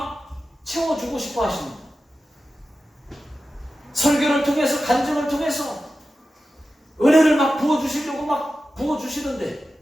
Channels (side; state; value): both; normal; correlation 0.93